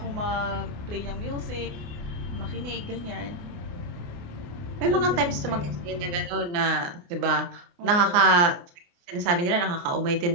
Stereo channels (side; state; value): left; late; 28 ms